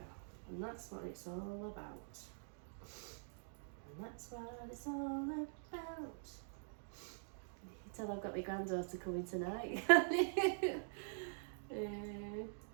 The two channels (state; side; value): silent; left; digital silence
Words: and that's what it's all about. And that's what it's all about. You can tell I've got my granddaughter coming tonight.